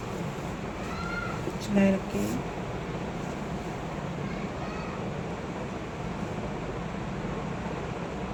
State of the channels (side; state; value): both; identical; correlation 1.00